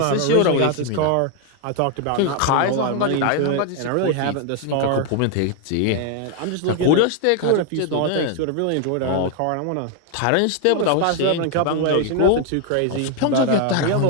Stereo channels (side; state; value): both; different; correlation 0.01